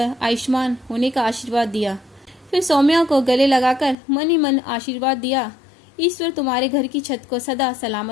आयुष्मान होने का आशीर्वाद दिया। फिर सौम्या को गले लगाकर मन ही मन आशीर्वाद दिया, ईश्वर तुम्हारे घर की छत को सदा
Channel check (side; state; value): right; drops out; at 4.0 s